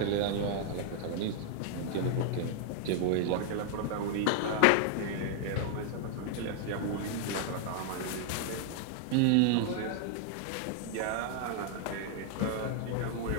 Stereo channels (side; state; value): both; different; correlation 0.00